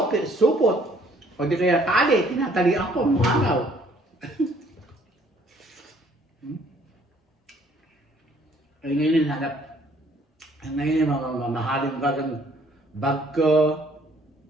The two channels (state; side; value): normal; both; correlation 0.62